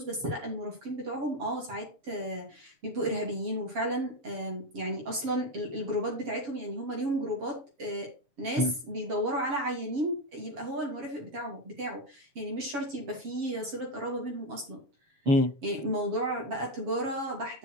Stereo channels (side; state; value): left; late; 7.2 ms